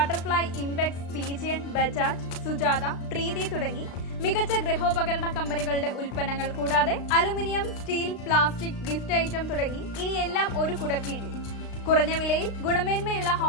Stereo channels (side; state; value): right; late; 35 ms